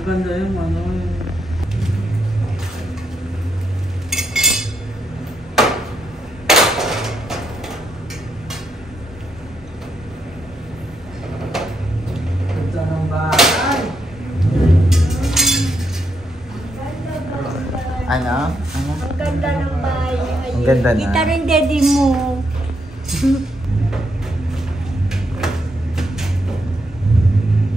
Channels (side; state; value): both; normal; correlation 0.79